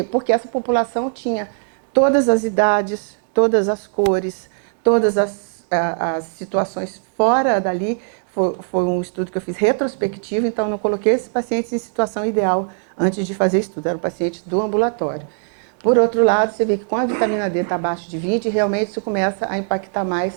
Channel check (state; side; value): silent; left; 66 dB below the other